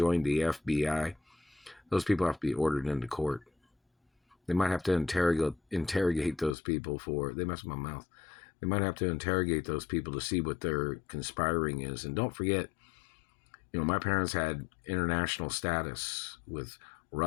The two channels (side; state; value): right; drops out; at 6.6 s